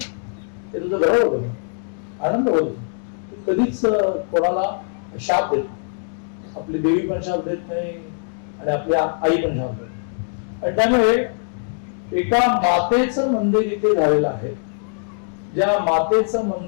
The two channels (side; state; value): right; silent; digital silence